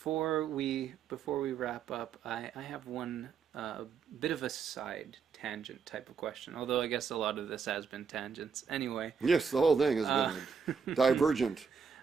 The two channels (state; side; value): quieter; left; 6.0 dB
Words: we wrap up, I have one bit of a side tangent type of question. Although I guess a lot of this has been tangents. Anyway. Yes, the whole thing has been divergent.